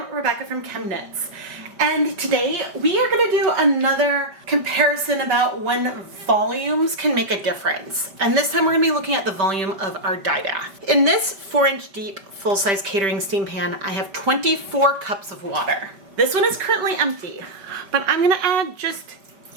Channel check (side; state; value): left; late; 5.1 ms